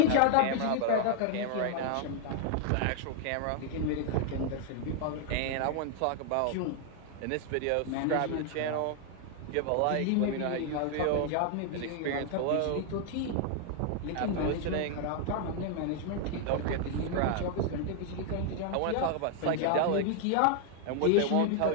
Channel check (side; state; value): both; different; correlation 0.00